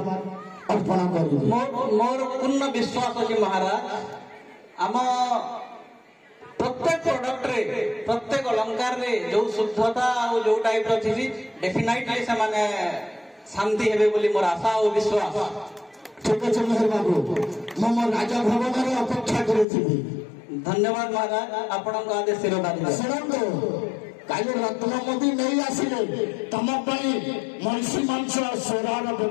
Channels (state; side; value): drops out; right; at 19.7 s